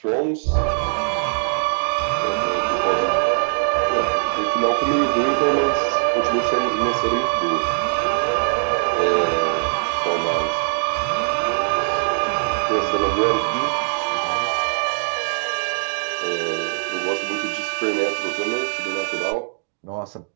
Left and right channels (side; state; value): left; silent; digital silence